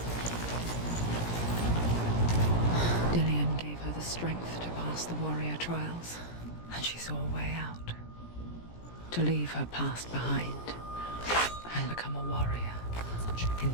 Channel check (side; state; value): right; late; 17 ms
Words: strength to pass the warrior trials, and she saw a way out. To leave her past behind and become a warrior in